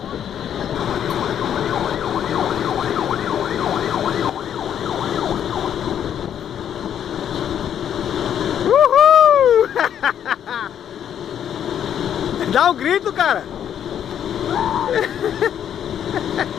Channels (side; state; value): right; quieter; 9.5 dB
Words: Uhul! Dá um grito, cara.